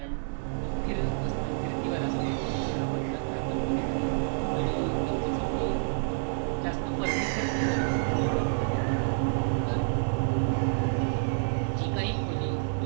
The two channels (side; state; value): left; silent; digital silence